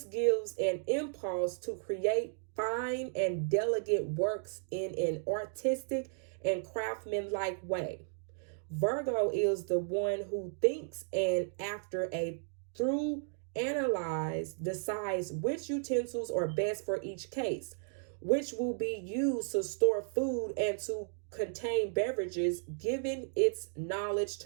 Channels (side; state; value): left; silent; digital silence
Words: gives an impulse to create fine and delicate works in an artistic and craftsmanlike way. Virgo is the one who thinks and after a through analyze decides which utensils are best for each case, which will be used to store food and to contain beverages, giving its knowledge